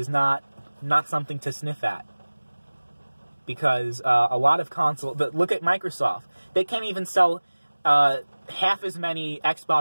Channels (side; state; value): both; inverted; correlation -1.00